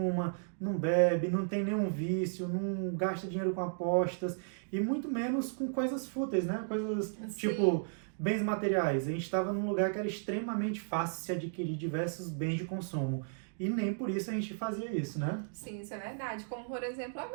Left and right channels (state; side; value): silent; left; digital silence